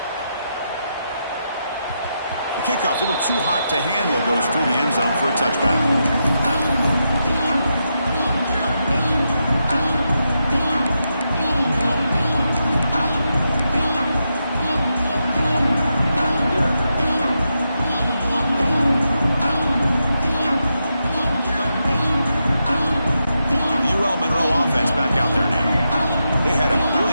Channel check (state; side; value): inverted; both; correlation -0.85